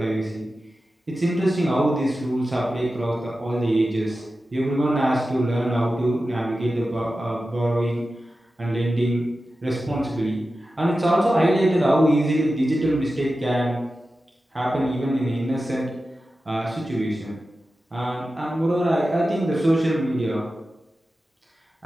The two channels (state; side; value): normal; both; correlation 0.93